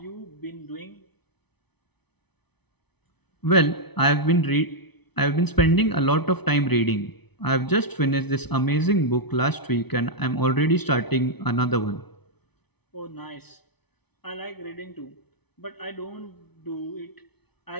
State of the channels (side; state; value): right; late; 0.99 ms